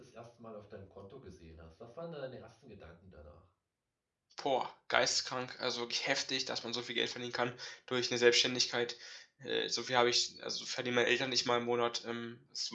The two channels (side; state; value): both; identical; correlation 1.00